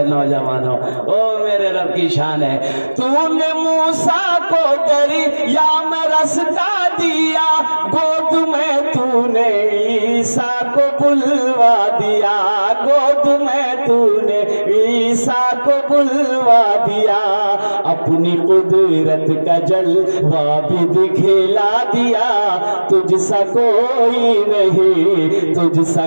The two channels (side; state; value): both; inverted; correlation -1.00